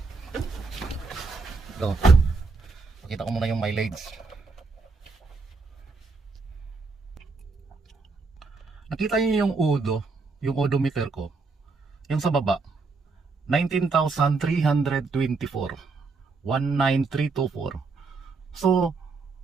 Pakita ko muna yung mileage. Nakita niyo yung yung odometer ko. Yung sa baba, 19,324. 19324. So,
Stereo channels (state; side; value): quieter; left; 4.2 dB